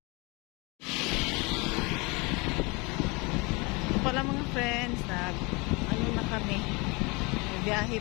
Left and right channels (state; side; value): quieter; right; 27.5 dB